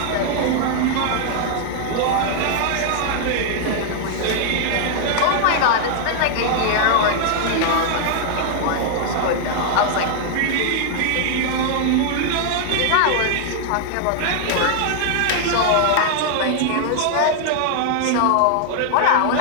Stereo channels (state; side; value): different; both; correlation 0.00